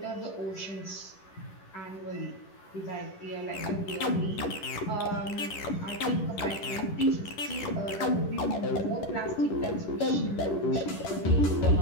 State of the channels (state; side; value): late; right; 10 ms